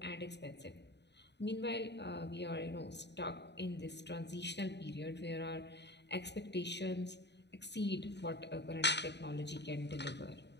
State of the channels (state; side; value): late; right; 0.50 ms